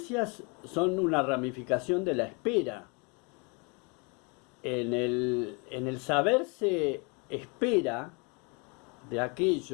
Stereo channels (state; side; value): quieter; right; 31.9 dB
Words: son una ramificación de la espera. En el saberse espera de